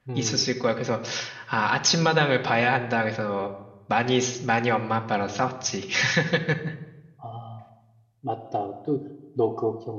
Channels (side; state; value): both; identical; correlation 1.00